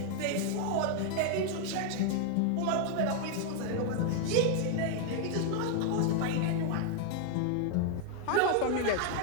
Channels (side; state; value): both; different; correlation 0.00